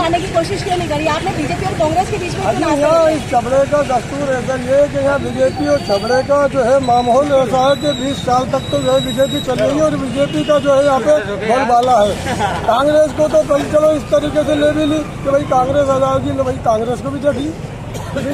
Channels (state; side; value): identical; both; correlation 1.00